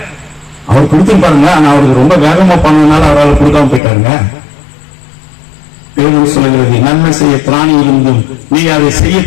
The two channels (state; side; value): drops out; right; at 3.8 s